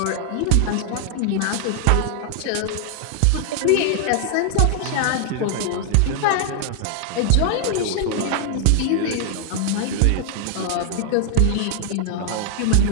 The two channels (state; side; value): different; both; correlation 0.00